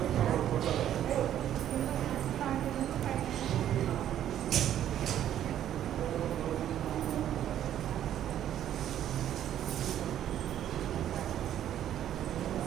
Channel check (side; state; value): left; quieter; 11.1 dB